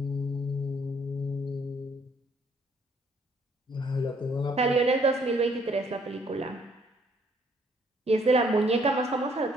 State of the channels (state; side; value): normal; both; correlation 0.65